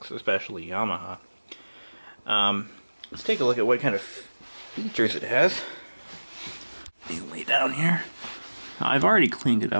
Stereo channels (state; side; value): inverted; both; correlation -1.00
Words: especially Yamaha. Let's take a look at what kind of features it has. You lay down here. I've already cleaned it